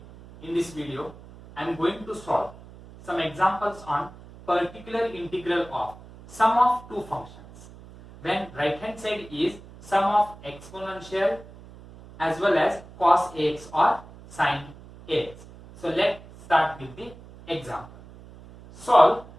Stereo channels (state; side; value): noise; right; hum, 19 dB below the sound